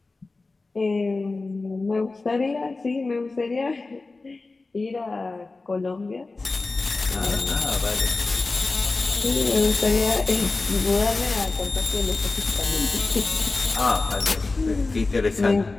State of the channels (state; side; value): quieter; right; 3.6 dB